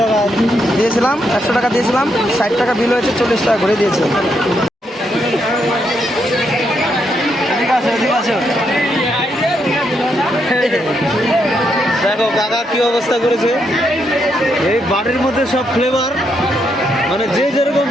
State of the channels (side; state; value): both; normal; correlation 0.78